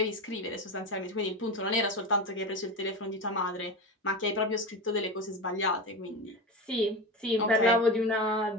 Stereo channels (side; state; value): both; normal; correlation 0.23